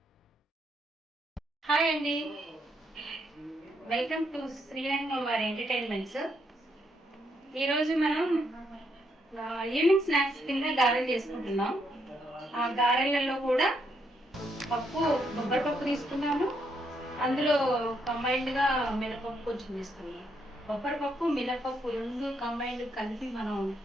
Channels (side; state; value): both; normal; correlation 0.76